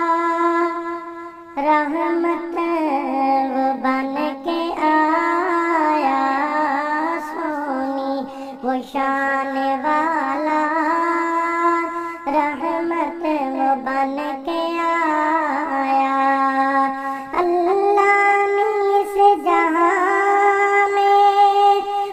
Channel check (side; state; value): both; identical; correlation 1.00